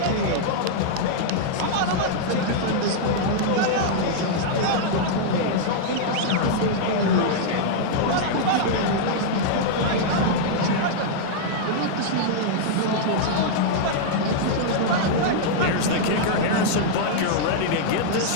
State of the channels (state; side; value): different; both; correlation -0.01